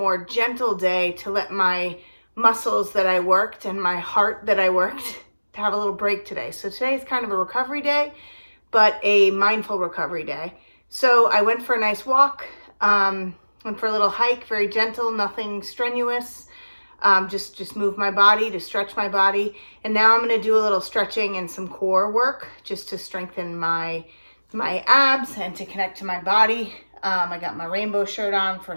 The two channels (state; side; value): inverted; both; correlation -1.00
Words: gentle day to let my muscles that I worked and my heart that I worked to have a little break today. So today is kind of a recovery day, but a mindful recovery day. So I went for a nice walk. Went for a little hike, very gentle, nothing strenuous. Just move my body to stretch my body. And now I'm going to do a little stretching and some core work just to strengthen my abs and to connect to my body. I got my rainbow shirt on